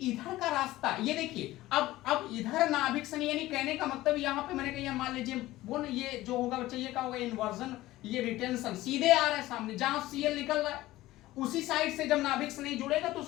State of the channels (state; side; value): quieter; right; 16.8 dB